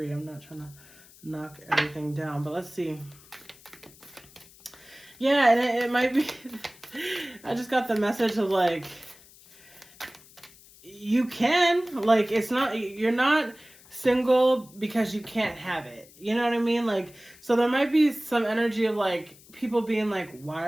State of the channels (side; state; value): left; noise; hiss, 24 dB below the sound